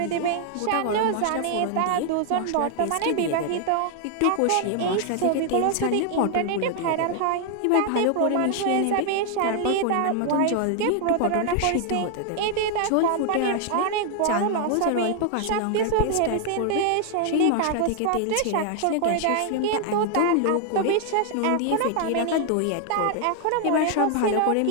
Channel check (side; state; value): both; different; correlation 0.00